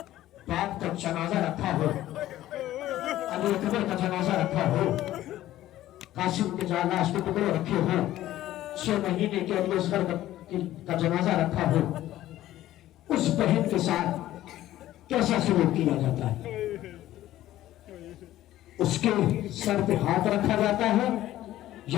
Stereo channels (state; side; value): quieter; right; 14.2 dB